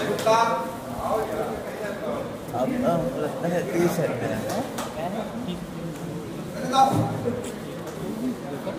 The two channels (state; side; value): identical; both; correlation 1.00